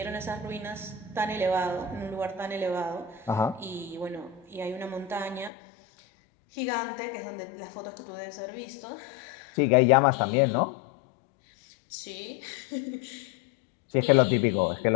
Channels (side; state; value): right; drops out; at 5.5 s